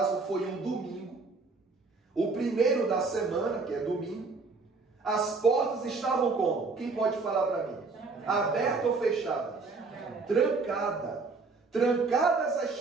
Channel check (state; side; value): quieter; left; 4.1 dB